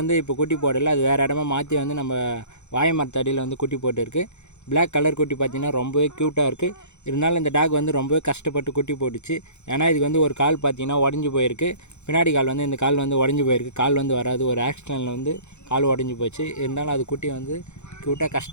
இப்போ குட்டி போடலை, அது வேறு இடமா மாற்றி வந்து நம்ம வாழை மரத்தடியில் வந்து குட்டி போட்டுருக்கு. பிளாக் கலர் குட்டி பார்த்திங்கன்னா ரொம்பவே க்யூட்டாக இருக்குது. இருந்தாலும் இந்த டாக் வந்து ரொம்பவே கஷ்டப்பட்டு குட்டி போட்டுச்சு. ஏன்னா இதுக்கு வந்து ஒரு கால் பார்த்திங்கன்னா உடஞ்சி போயிருக்கு. பின்னாடி கால் வந்து இந்த கால் வந்து உடஞ்சி போயிருக்கு. கால் வந்து வராது. ஒரு ஆக்சிடென்ட்டில் வந்து கால் உடஞ்சி போச்சு. இருந்தாலும் அது குட்டி வந்து க்யூட்டாக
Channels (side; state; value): right; late; 0.82 ms